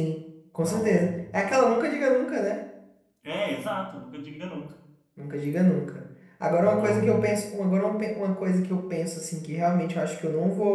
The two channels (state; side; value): identical; both; correlation 1.00